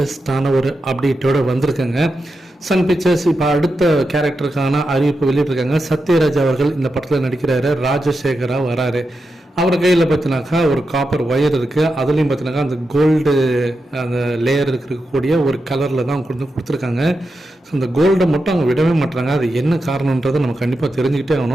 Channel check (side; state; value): both; normal; correlation 0.88